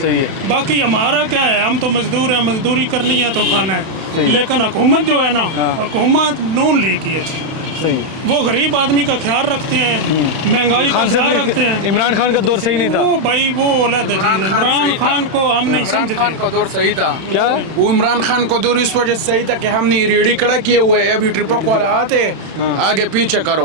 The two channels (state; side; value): late; left; 31 ms